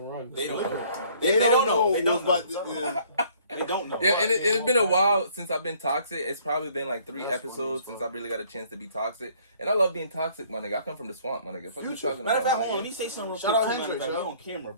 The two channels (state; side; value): inverted; both; correlation -0.59